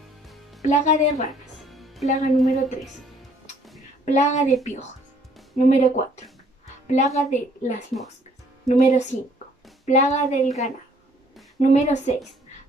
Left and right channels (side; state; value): both; normal; correlation 0.61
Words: Plaga de ranas. Plaga número 3. Plaga de piojos. Número 4. Plaga de las moscas. Número 5. Plaga del ganado. Número 6.